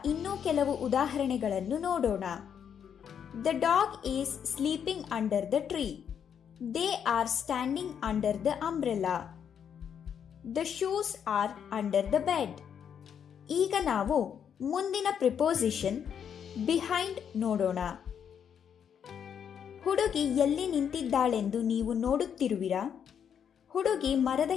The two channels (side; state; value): right; quieter; 8.1 dB